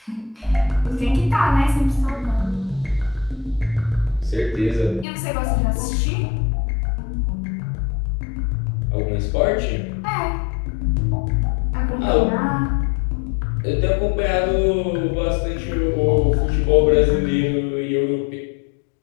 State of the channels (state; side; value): drops out; right; at 5.1 s